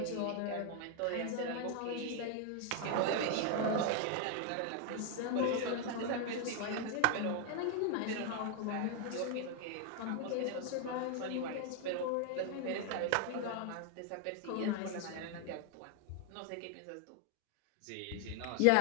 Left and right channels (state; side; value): different; both; correlation 0.00